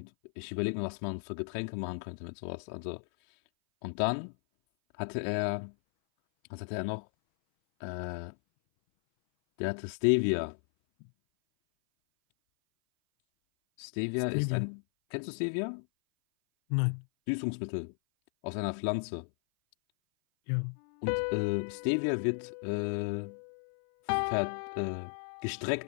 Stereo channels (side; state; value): right; silent; 55 dB below the other